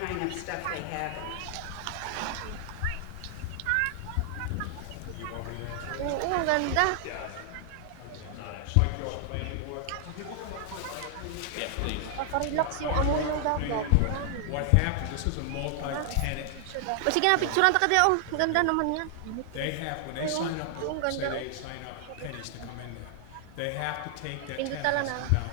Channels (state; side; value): different; both; correlation 0.00